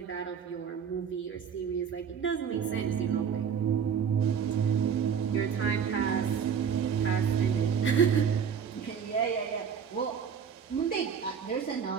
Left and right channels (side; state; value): left; quieter; 7.3 dB